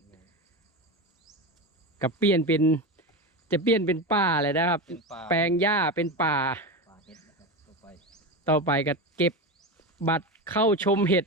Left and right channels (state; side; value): normal; both; correlation 0.20